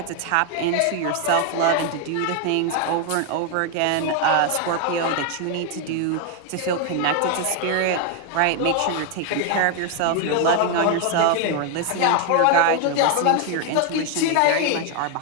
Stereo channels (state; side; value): different; both; correlation 0.01